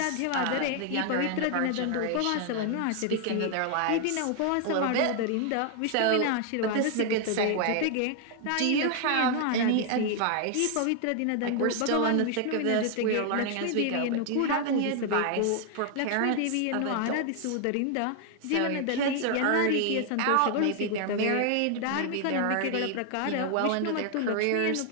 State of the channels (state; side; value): different; both; correlation 0.00